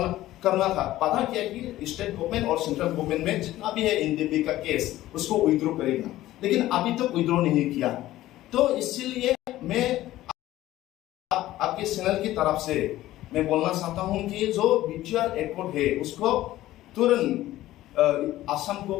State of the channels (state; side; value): quieter; right; 15.2 dB